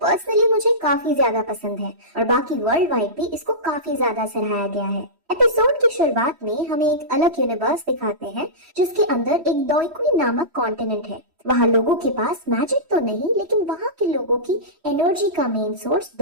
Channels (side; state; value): left; late; 3.1 ms